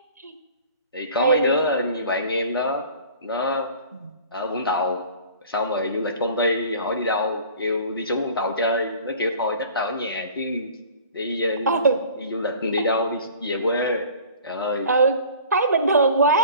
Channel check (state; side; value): inverted; both; correlation -0.46